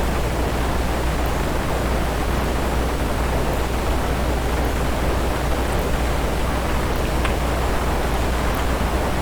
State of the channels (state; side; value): identical; both; correlation 1.00